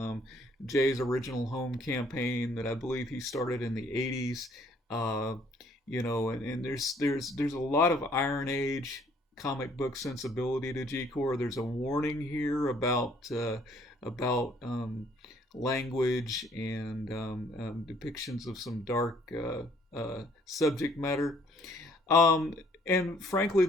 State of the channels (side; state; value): both; normal; correlation 0.62